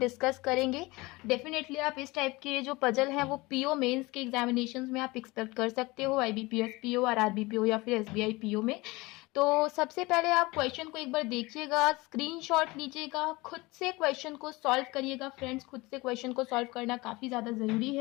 करेंगे। डेफिनेटली आप इस टाइप के जो पजल है वो पीओ मेंस के एग्जामिनेशंस में आप एक्सपेक्ट कर सकते हो, आईबीपीएस पीओ और आरबी पीओ या फिर एसबीआई पीओ में। तो सबसे पहले आप क्वेश्चन को एक बार देखिएगा, स्क्रीनशॉट लीजिएगा, खुद से क्वेश्चन को सॉल्व करिएगा। फ्रेंड्स, खुद से क्वेश्चन को सॉल्व करना काफ़ी ज़्यादा ज़रूरी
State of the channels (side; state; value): right; quieter; 22.5 dB